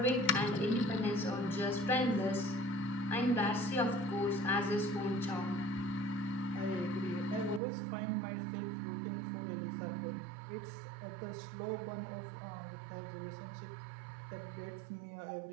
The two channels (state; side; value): drops out; left; at 7.6 s